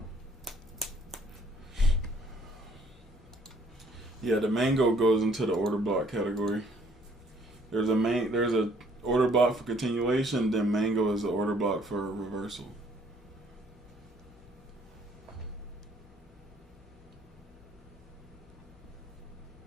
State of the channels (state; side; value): normal; both; correlation 0.62